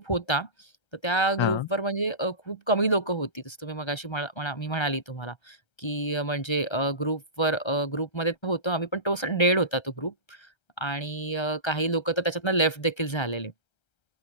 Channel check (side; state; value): right; late; 1.3 ms